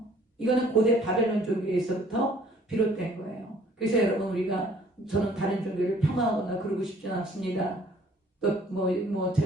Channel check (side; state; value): both; normal; correlation 0.58